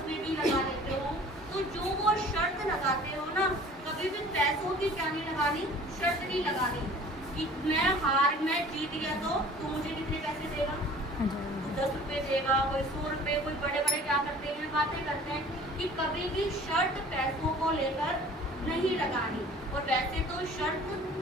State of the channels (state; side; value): normal; both; correlation 0.48